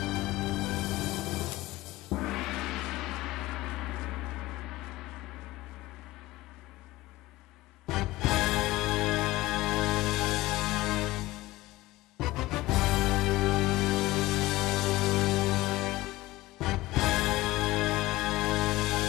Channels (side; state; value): right; quieter; 18.4 dB